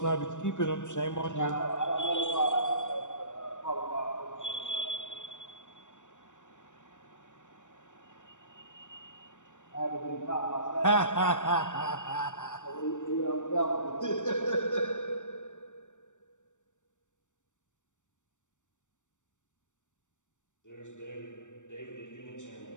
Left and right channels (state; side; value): late; right; 0.85 ms